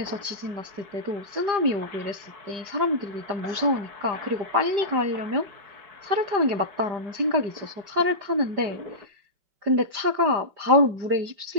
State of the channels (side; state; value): left; late; 5.0 ms